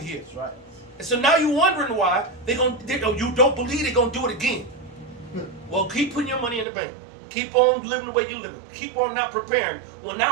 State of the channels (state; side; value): drops out; left; at 6.7 s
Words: That's right. And so now you're wondering why you don't believe they're gonna do it again. Well, keep putting your money in the bank. Keep on living the way you live. Keep on not preparing. Well,